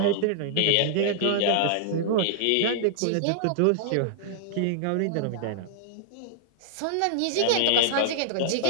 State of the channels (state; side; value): different; both; correlation -0.01